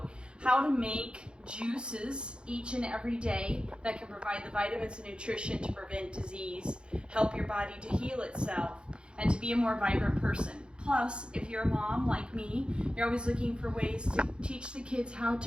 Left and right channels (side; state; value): left; late; 0.053 ms